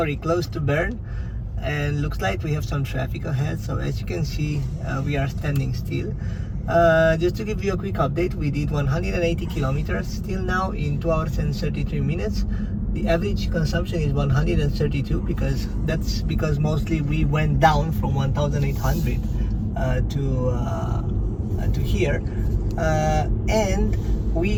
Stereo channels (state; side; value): identical; both; correlation 1.00